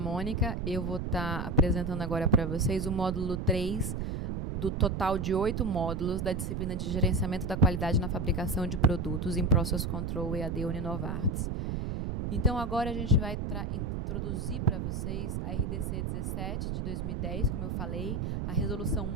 Eu vou estar apresentando agora para vocês o módulo 3 do total de 8 módulos da disciplina de Gerenciamento da Qualidade na Fabricação de Produtos em Process Control EAD Uninovartis. Então, agora a gente vai introduzir para vocês a RDC 17 de 2010, como eu falei, a resolução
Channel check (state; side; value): noise; right; rumble, 2 dB below the sound